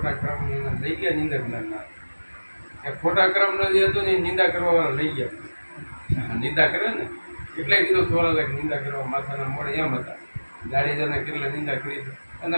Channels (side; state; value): both; inverted; correlation -1.00